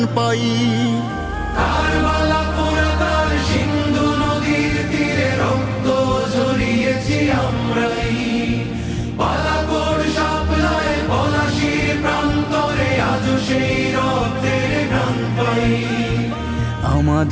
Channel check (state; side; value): identical; both; correlation 1.00